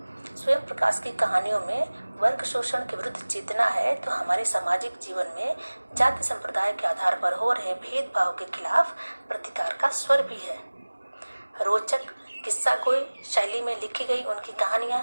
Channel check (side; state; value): both; inverted; correlation -1.00